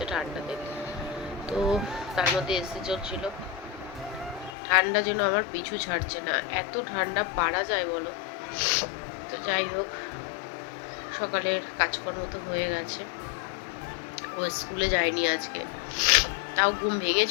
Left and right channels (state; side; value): drops out; right; at 4.5 s